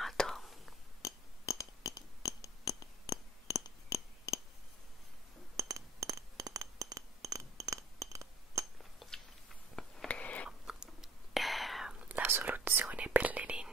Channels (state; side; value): normal; both; correlation 0.53